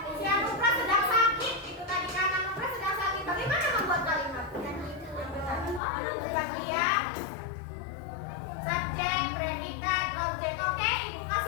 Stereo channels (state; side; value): drops out; right; at 5.8 s